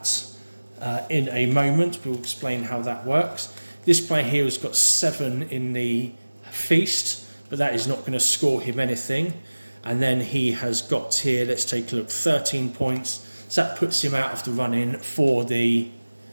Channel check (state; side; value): inverted; both; correlation -1.00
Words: in a moment. We'll explain how that works. This player here has got 7 in the feast, but that is not going to score him anything. And then he has got here, let's take a look, 13 points. So that puts him out of the run-in for the